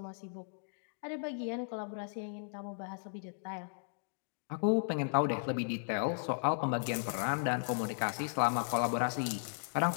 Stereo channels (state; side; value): silent; right; digital silence